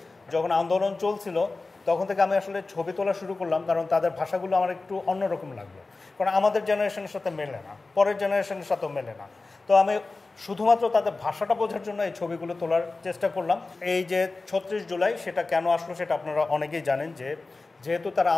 যখন আন্দোলন চলছিল তখন থেকে আমি আসলে ছবি তোলা শুরু করলাম, কারণ তাদের ভাষাগুলো আমার একটু অন্যরকম লাগলো, কারণ আমাদের জেনারেশনের সাথে মেলে না, পরের জেনারেশনের সাথেও মেলে না। তো আমি শুধুমাত্র তাদের ভাষাটা বোঝার জন্য এই ছবিগুলো তোলার চেষ্টা করলাম। এই যে 36 জুলাই সেটা কেন আসলো সেটা আপনারা অনেকেই জানেন, যে যেহেতু তারা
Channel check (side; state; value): right; quieter; 3.5 dB